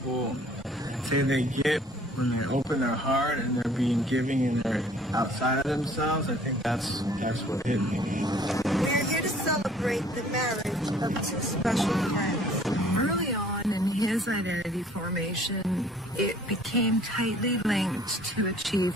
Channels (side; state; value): both; normal; correlation 0.55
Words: say they get when they open their heart and they're being giving and they're outside of themselves, I think that's what hit me. We're here to celebrate the marriage of two special friends. Early on in his identity formation, it became tightly linked to